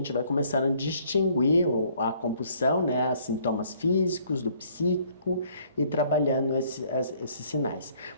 vai começando a distinguir a compulsão, né, os sintomas físicos, do psíquico, e trabalhando esses sinais.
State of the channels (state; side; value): inverted; both; correlation -0.62